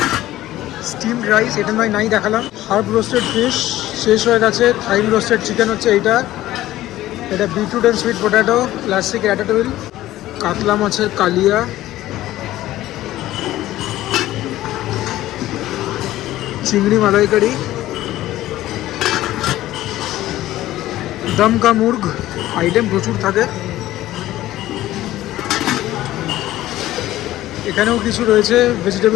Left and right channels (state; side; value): quieter; right; 15.1 dB